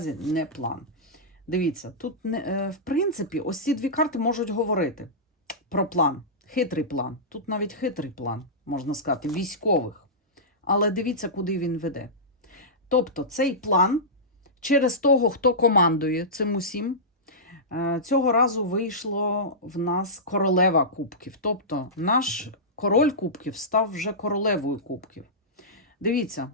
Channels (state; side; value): normal; both; correlation -0.16